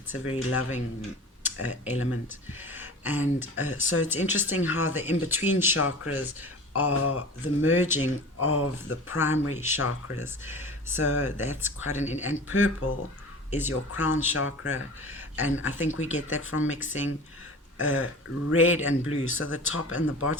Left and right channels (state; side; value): normal; both; correlation 0.37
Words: a very loving element. And so it's interesting how the in-between chakras are the merging of the primary chakras. So that's quite and purple is your crown chakra. And I think we get that from mixing red and blue. So the top and the